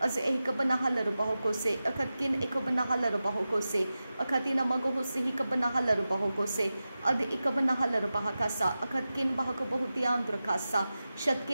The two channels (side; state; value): both; inverted; correlation -0.94